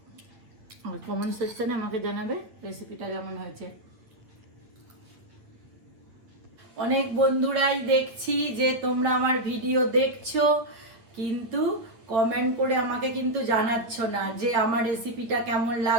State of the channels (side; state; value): left; late; 8.6 ms